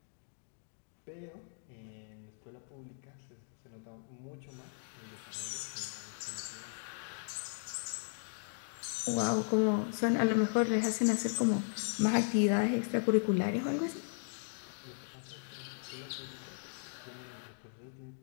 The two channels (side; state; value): right; silent; digital silence